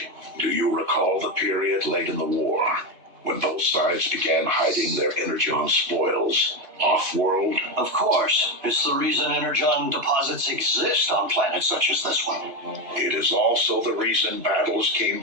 Do you recall the period late in the war when both sides began hiding their energon spoils off-world? Of course. It's the reason energon deposits exist on planets such as this one. It is also the reason battles came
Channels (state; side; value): late; left; 2.5 ms